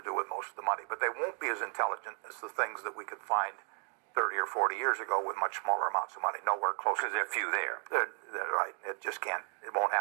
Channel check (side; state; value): left; quieter; 39.3 dB